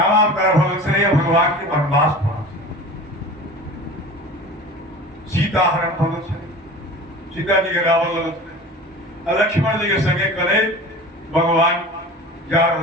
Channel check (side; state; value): both; normal; correlation 0.38